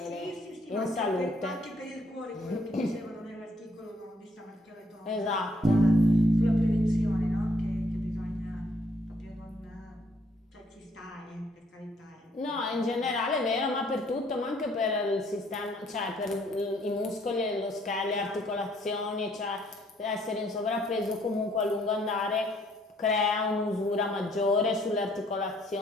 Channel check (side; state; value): both; normal; correlation 0.66